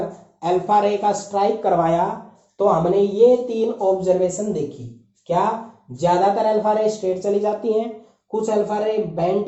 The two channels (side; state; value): both; identical; correlation 1.00